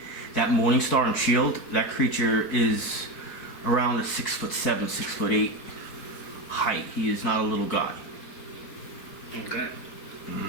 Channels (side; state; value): right; late; 4.9 ms